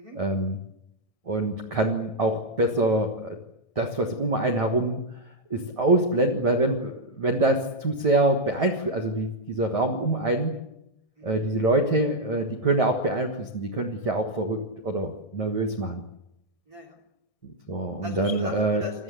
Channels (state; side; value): late; right; 1.6 ms